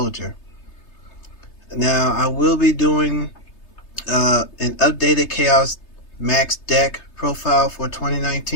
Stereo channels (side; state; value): right; late; 3.3 ms